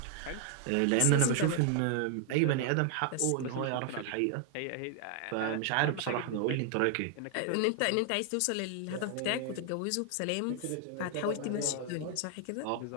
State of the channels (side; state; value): both; different; correlation 0.00